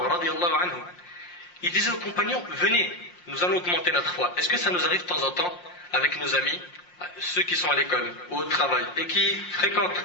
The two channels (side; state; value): right; late; 5.6 ms